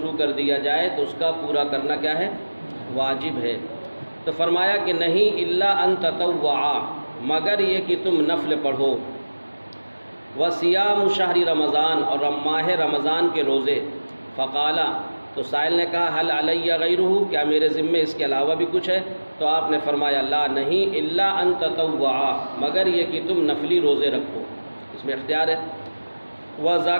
کر دیا جائے تو اس کا پورا کرنا کیا ہے؟ واجب ہے۔ تو فرمایا کہ نہیں، الا ان تطوع، مگر یہ کہ تم نفل پڑھو۔ وصیام شہر رمضان، اور ماہ رمضان کے روزے۔ فقالا، تو سائل نے کہا حل علی غیرہ، کیا میرے ذمے اس کے علاوہ بھی کچھ ہے؟ تو آپ نے فرمایا لا نہیں، الا ان تطوعا، مگر یہ کہ تم نفلی روزے رکھو، اس میں اختیار ہے۔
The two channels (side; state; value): both; inverted; correlation -1.00